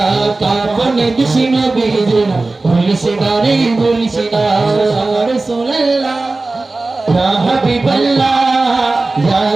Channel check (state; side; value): quieter; left; 3.3 dB